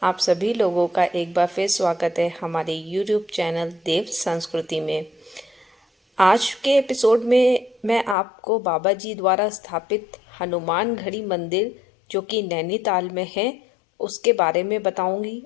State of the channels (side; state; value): right; drops out; at 8.2 s